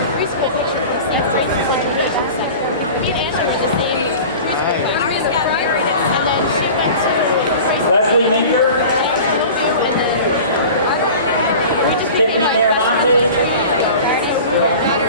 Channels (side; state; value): both; inverted; correlation -0.38